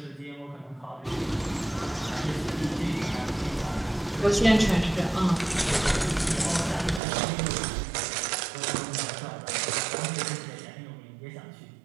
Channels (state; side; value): drops out; left; at 7.0 s